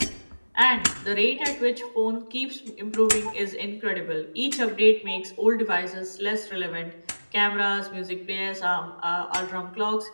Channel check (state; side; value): inverted; both; correlation -1.00